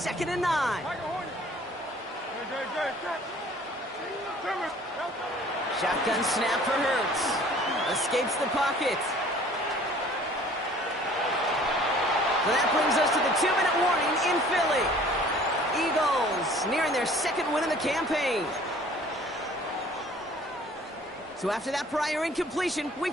and 9. Shotgun snap for Hurts. Escapes the pocket. So that brings us to the 2-minute warning in Philly. Eagles nearing their second win of the campaign. So after that prior incompletion,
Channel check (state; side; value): normal; both; correlation 0.52